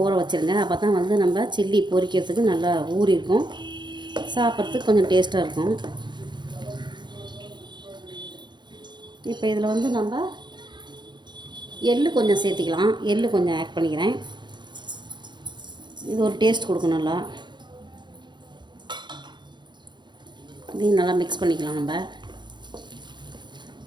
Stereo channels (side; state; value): left; late; 0.22 ms